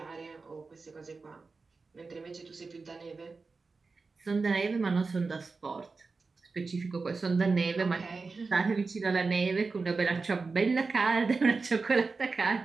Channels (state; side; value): quieter; left; 4.2 dB